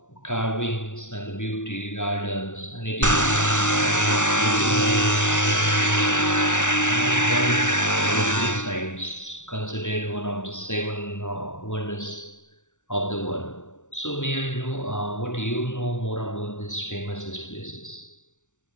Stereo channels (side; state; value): right; late; 0.85 ms